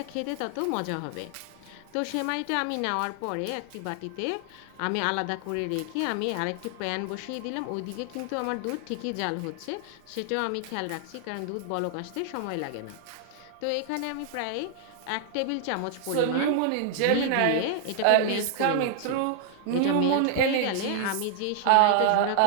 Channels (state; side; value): different; both; correlation 0.00